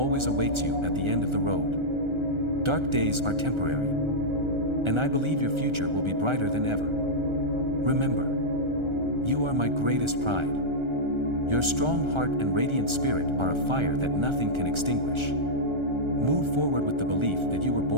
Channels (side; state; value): left; late; 1.3 ms